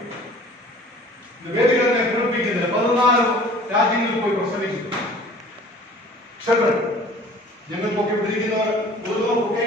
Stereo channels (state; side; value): normal; both; correlation 0.48